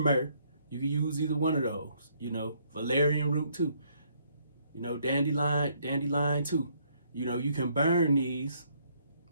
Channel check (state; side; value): inverted; both; correlation -0.68